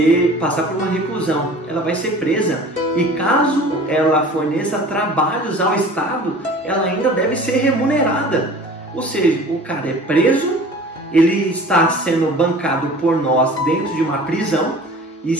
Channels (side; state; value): both; normal; correlation 0.43